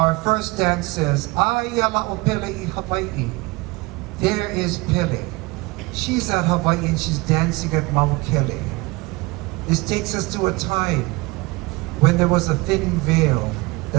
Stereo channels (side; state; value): left; quieter; 23.7 dB